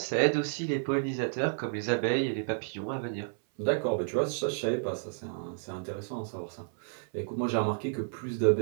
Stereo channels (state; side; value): silent; left; 57 dB below the other